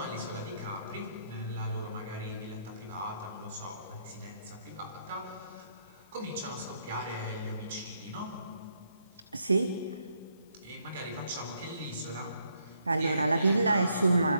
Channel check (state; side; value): inverted; both; correlation -0.74